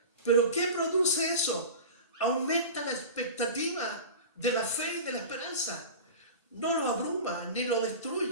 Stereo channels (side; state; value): both; inverted; correlation -0.32